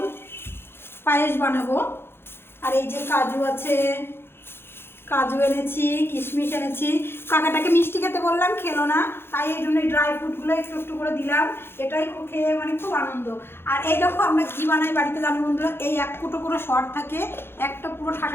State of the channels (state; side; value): late; right; 0.11 ms